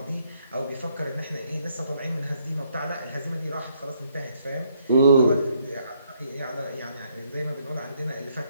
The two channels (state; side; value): inverted; both; correlation -0.70